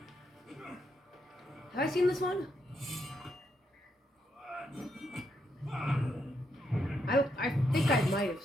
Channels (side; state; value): both; normal; correlation 0.79